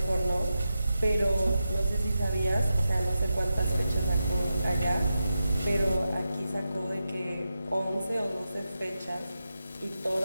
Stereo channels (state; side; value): inverted; both; correlation -0.90